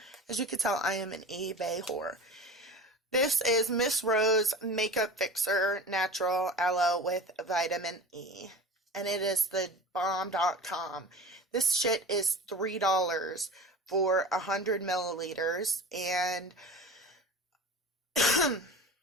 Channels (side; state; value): both; normal; correlation 0.35